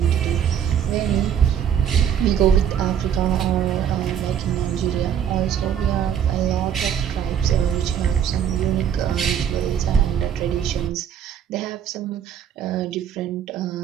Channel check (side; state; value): left; quieter; 8.9 dB